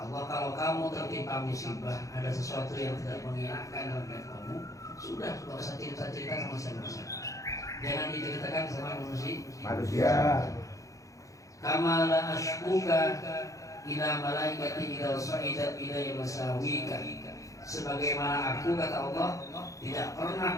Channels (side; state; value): right; late; 0.16 ms